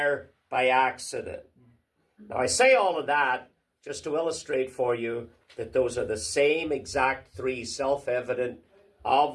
by accident. Now, I say all of that just to illustrate for you that those are the same exact three self-evident,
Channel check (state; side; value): identical; both; correlation 1.00